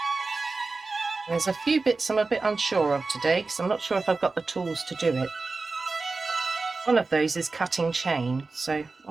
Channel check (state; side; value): quieter; left; 3.8 dB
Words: There's a few bits I'm a bit unsure of today because I'm not sure if I've got the tools to do it. One of those is cutting chain, so